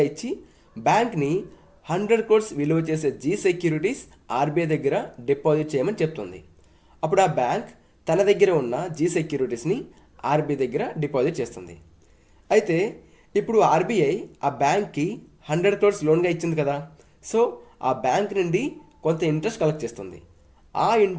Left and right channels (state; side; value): identical; both; correlation 1.00